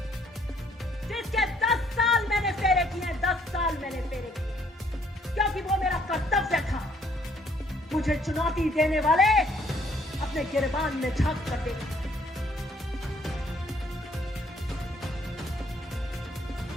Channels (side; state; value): both; normal; correlation 0.65